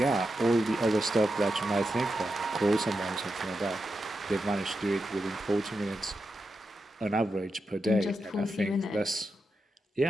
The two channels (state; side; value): normal; both; correlation 0.88